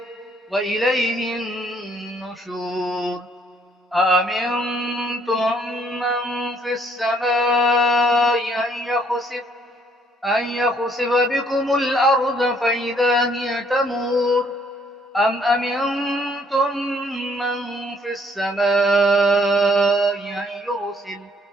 وإليه النشور. أأمنتم من في السماء أن يخسف بكم الأرض فإذا هي تمور أم أمنتم من في السماء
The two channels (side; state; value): both; normal; correlation 0.65